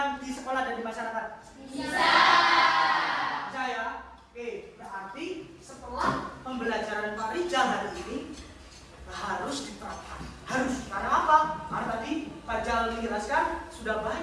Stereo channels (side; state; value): both; identical; correlation 1.00